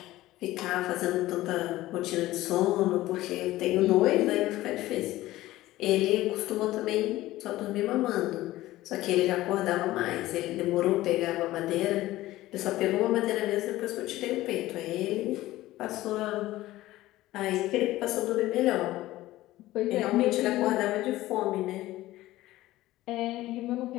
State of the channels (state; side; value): quieter; right; 16.5 dB